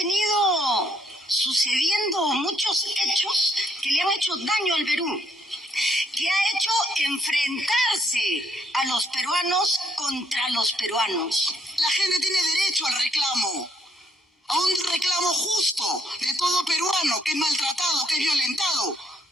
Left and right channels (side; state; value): both; normal; correlation 0.70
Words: sucediendo muchos hechos que le han hecho daño al Perú, que ha hecho enfrentarse a los peruanos contra los peruanos. La gente tiene derecho al reclamo, a un reclamo justo de todo peruano que es maltratado, que es violentado,